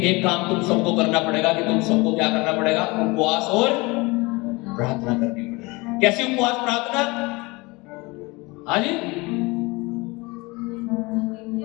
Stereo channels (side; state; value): right; quieter; 24.5 dB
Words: एक काम तुम सबको करना पड़ेगा कि तुम सबको क्या करना पड़ेगा? उपवास और प्रार्थना करनी पड़ेगी। कैसी उपवास प्रार्थना? हाँ जी,